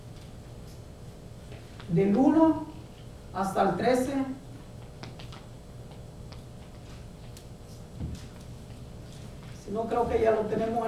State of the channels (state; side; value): identical; both; correlation 1.00